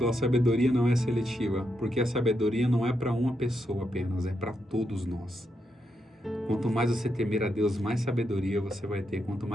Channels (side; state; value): both; normal; correlation 0.82